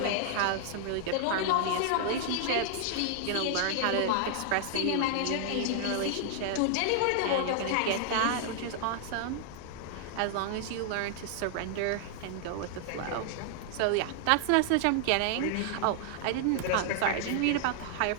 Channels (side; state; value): both; different; correlation 0.00